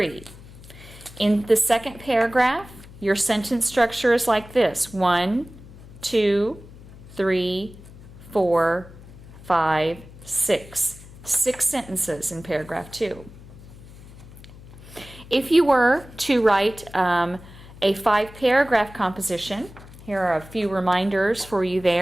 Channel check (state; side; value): noise; left; hum, 18 dB below the sound